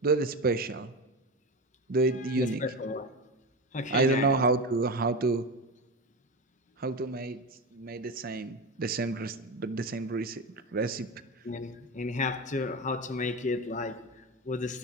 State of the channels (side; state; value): both; normal; correlation 0.22